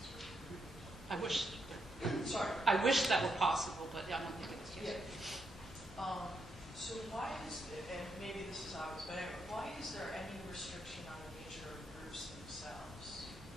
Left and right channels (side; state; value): both; normal; correlation 0.80